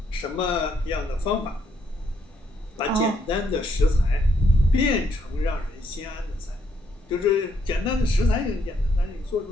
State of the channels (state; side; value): normal; both; correlation 0.73